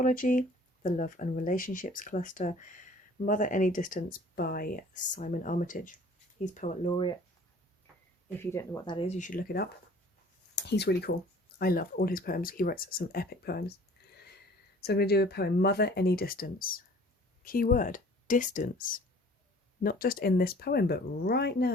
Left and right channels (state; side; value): normal; both; correlation 0.51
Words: the Love and Relationships cluster, Mother Any Distance by Simon Armitage. He's Poet Laureate. If you don't know what that is, you should look it up. He's really cool. I love all his poems. He writes some epic poems. So I'm going to do a poem, Mother Any Distance. Key word, distance. Not just in this poem, but right